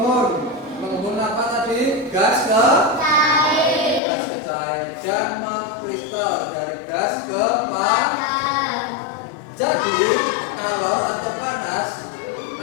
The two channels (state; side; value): drops out; right; at 4.0 s